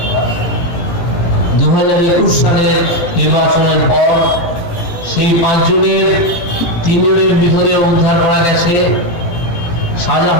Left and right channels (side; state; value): right; late; 17 ms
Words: সালের নির্বাচনের পর সেই 5 জনের 3 জনের মৃতদেহ উদ্ধার করা গেছে।